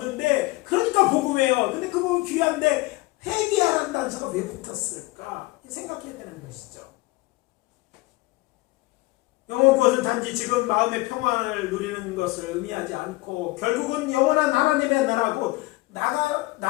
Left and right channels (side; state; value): right; quieter; 21.7 dB